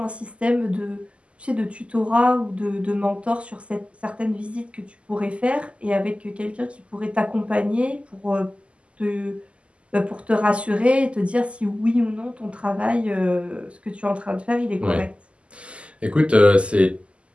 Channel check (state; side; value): late; left; 0.056 ms